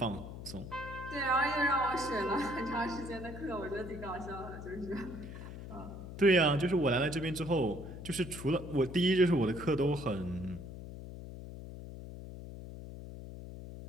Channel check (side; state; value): left; noise; hum, 11 dB below the sound